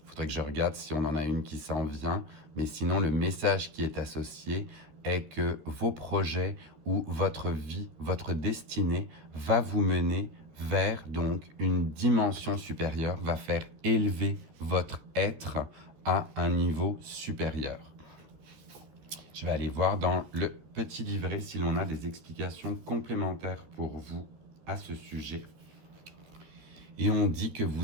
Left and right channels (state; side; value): late; left; 13 ms